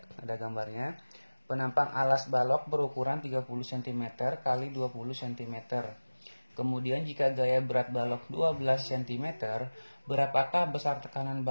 gambarnya. Penampang alas balok berukuran 30 cm kali 20 cm. Kemudian jika gaya berat balok 12 cm, berapakah besar tekanan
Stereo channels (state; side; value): inverted; both; correlation -1.00